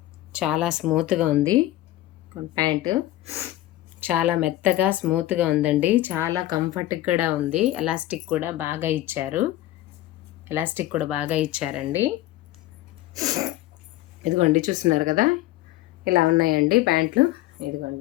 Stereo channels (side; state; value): right; quieter; 15.4 dB